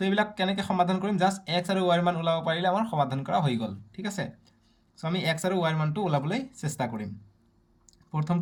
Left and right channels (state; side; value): identical; both; correlation 1.00